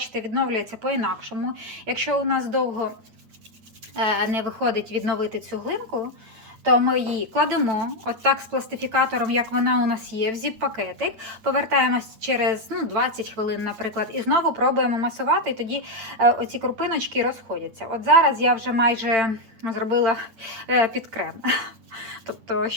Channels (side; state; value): left; late; 9.2 ms